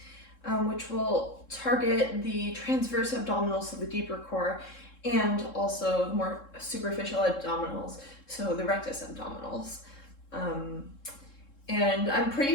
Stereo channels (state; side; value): late; right; 3.7 ms